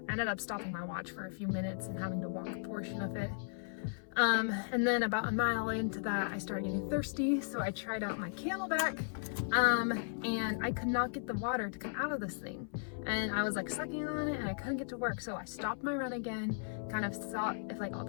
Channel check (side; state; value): right; silent; 54 dB below the other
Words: I ended up stopping my watch for a few minutes and having to walk a portion of it. And then about a mile into that, I started getting thirsty, so I tried out my Camelback, and I could not get the water to come out of this thing. And I was like sucking on it, and I couldn't get to work, so I stopped my run again, kind of saw if like all